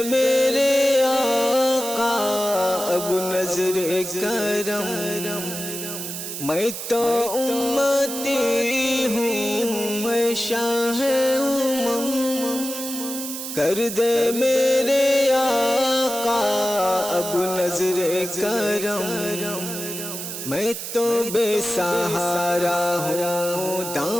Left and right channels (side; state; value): right; noise; hiss, 7 dB below the sound